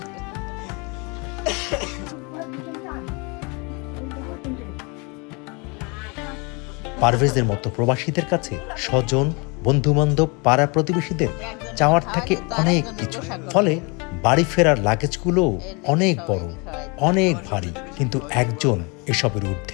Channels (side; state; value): right; quieter; 30.2 dB